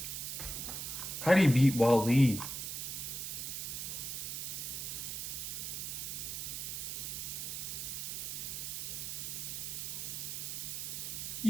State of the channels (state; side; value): noise; right; hiss, 4 dB below the sound